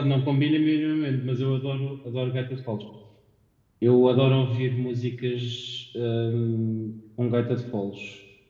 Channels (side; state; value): both; identical; correlation 1.00